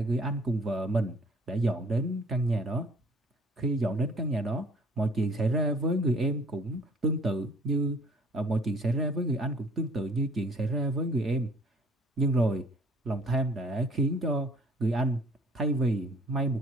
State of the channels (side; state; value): both; normal; correlation 0.55